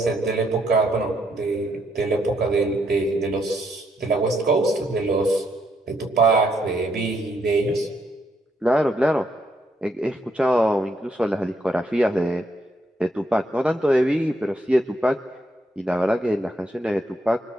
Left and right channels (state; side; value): normal; both; correlation 0.75